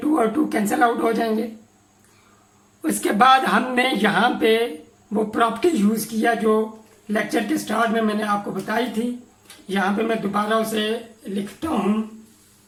और 2 कैंसिल आउट हो जाएंगे। उसके बाद हमने यहाँ पे वो प्रॉपर्टी यूज़ किया जो लेक्चर के स्टार्ट में मैंने आपको बताई थी। यहाँ पे मैं दोबारा उसे लिखता हूँ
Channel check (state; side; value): identical; both; correlation 1.00